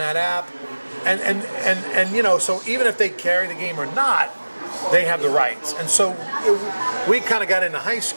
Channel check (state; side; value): inverted; both; correlation -1.00